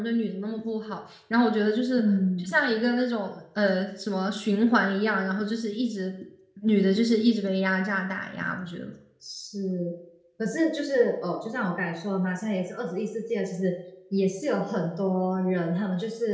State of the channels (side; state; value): both; identical; correlation 1.00